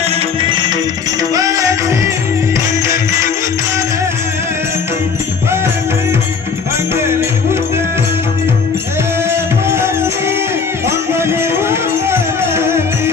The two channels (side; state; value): right; quieter; 5.5 dB